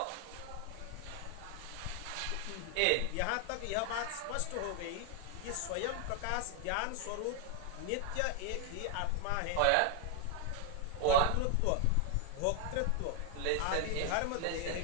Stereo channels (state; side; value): different; both; correlation 0.00